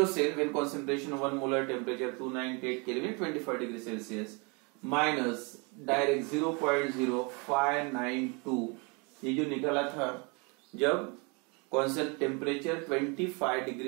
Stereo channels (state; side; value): quieter; left; 31.5 dB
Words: cell when concentration 1 molar, temperature 298 kelvin, 25 degree Celsius, minus direct 0.0592, ये जो निकला था जब कांस्टेंट टेम्परेचर 25